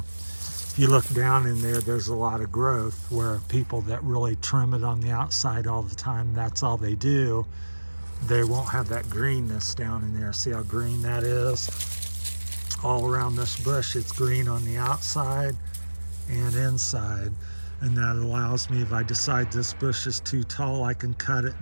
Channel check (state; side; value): inverted; both; correlation -1.00